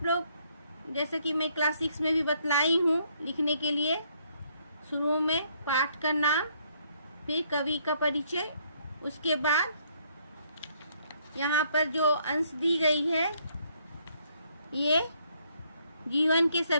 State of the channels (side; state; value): both; inverted; correlation -0.68